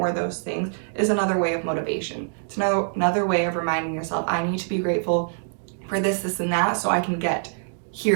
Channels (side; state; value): left; silent; digital silence